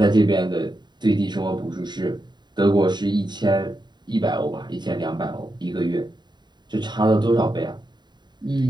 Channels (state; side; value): late; left; 0.21 ms